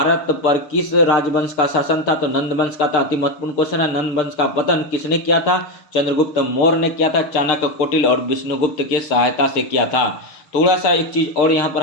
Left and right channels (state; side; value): late; right; 6.6 ms